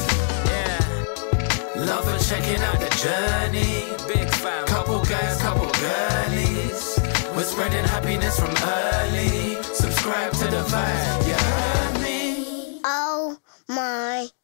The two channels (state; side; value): silent; right; digital silence